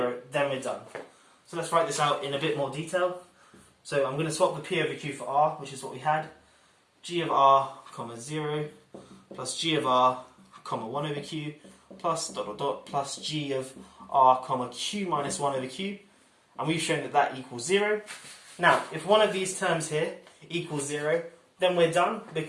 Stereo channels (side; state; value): both; identical; correlation 1.00